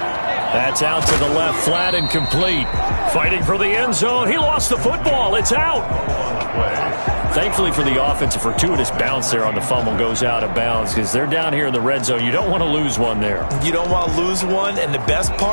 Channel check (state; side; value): inverted; both; correlation -1.00